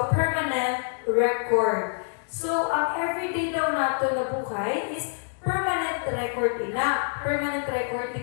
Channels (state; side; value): silent; right; digital silence